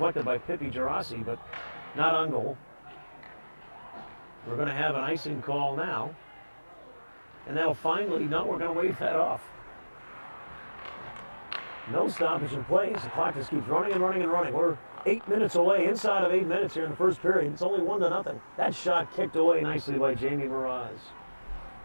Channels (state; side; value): inverted; both; correlation -1.00